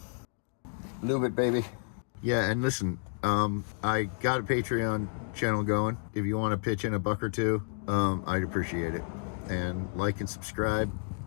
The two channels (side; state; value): right; silent; 57 dB below the other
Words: Lube it, baby. Yeah, and listen, I got a Patreon channel going. If you want to pitch in $1 or $2, I'd appreciate it. And like and subscribe,